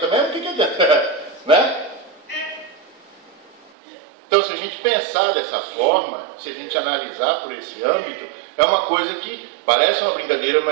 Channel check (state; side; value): drops out; left; at 3.7 s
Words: mesmo, o que adianta? Né? Então, se gente pensar dessa forma, se a gente analisar por esse âmbito, é uma coisa que parece uma brincadeira,